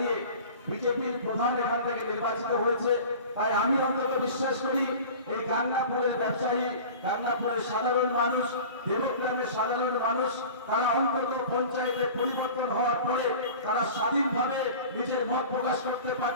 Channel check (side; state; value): both; inverted; correlation -0.39